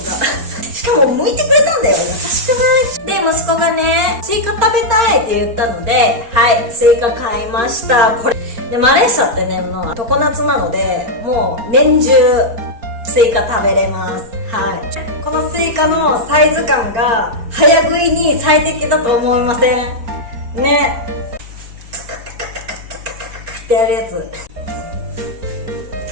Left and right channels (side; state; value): left; late; 4.3 ms